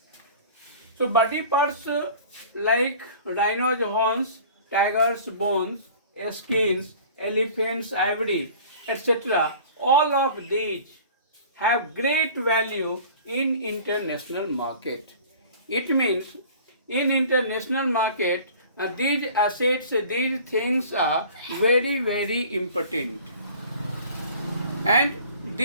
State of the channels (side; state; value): both; inverted; correlation -0.45